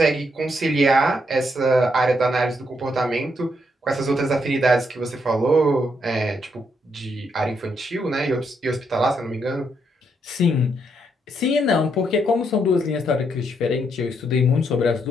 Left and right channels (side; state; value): both; normal; correlation 0.77